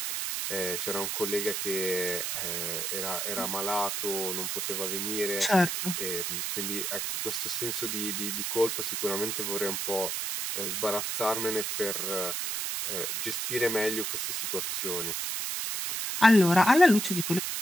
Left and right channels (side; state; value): right; noise; hiss, 2 dB below the sound